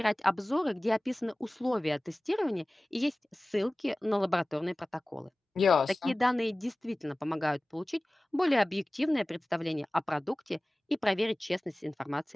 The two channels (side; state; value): both; normal; correlation 0.98